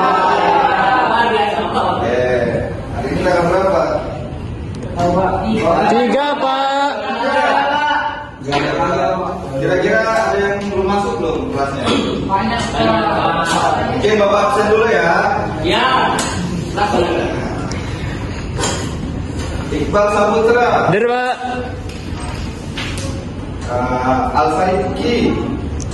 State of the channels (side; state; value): both; identical; correlation 1.00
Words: Hari ini tanggal berapa? 3, Pak. Kira-kira ada yang belum masuk belum kelasnya? Oke, Bapak absen dulu ya. Ya. Iqbal Saputra, Hadir, Pak. Al-Saiki,